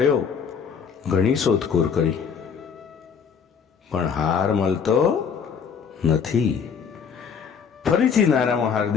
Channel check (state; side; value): quieter; right; 6.6 dB